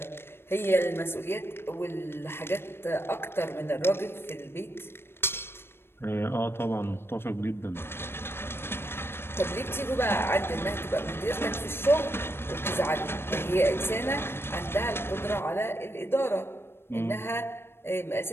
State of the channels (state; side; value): late; right; 0.11 ms